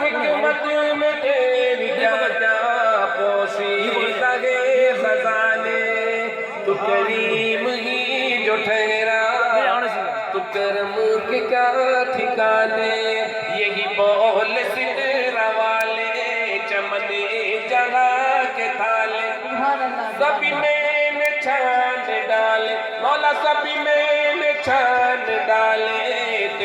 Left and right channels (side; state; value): both; identical; correlation 1.00